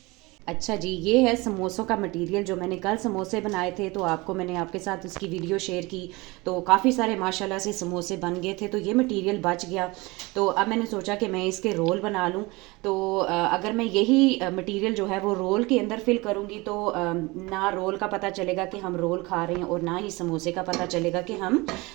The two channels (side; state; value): left; quieter; 23.7 dB